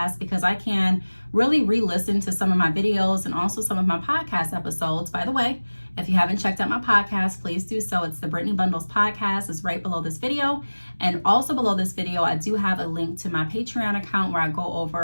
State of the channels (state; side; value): inverted; both; correlation -1.00